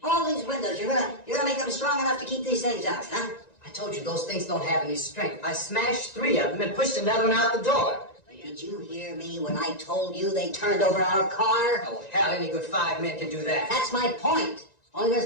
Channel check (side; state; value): right; late; 1.9 ms